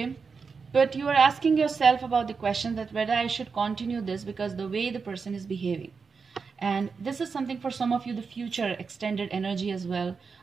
But you are asking yourself about the question that whether I should continue this because the way the person is behaving. And this is something for some of you, the future extended energy as well,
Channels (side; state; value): left; quieter; 5.2 dB